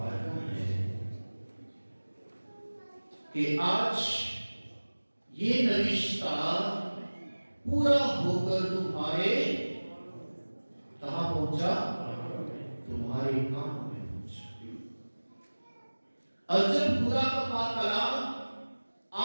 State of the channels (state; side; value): inverted; both; correlation -1.00